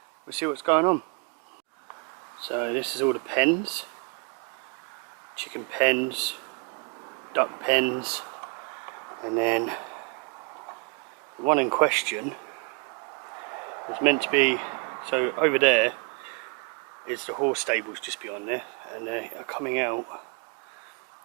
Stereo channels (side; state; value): left; quieter; 32.6 dB